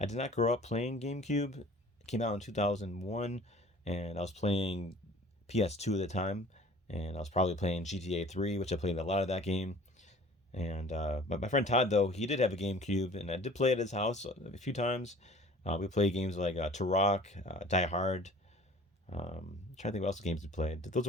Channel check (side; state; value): both; normal; correlation 0.47